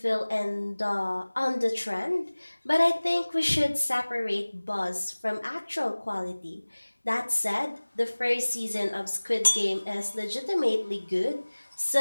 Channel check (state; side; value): inverted; both; correlation -1.00